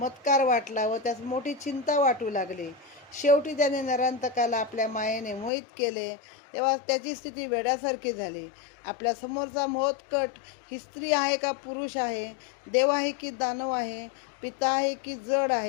वाटला व त्यास मोठी चिंता वाटू लागली. शेवटी त्याने नरांतकाला आपल्या मायेने मोहित केले. तेव्हा त्याची स्थिती वेड्यासारखी झाली. आपल्या समोरचा मोहत्कट ही स्त्री आहे का पुरुष आहे, देव आहे की दानव आहे, पिता आहे की जड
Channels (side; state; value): right; drops out; at 5.5 s